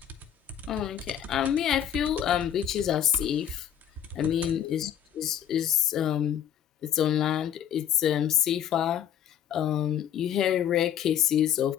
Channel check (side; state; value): right; quieter; 9.7 dB